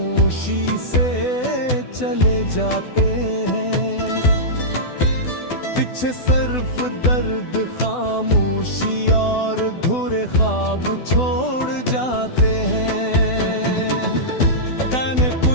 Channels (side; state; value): right; late; 12 ms